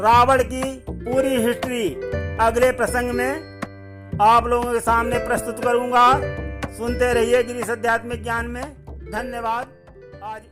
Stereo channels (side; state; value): both; identical; correlation 1.00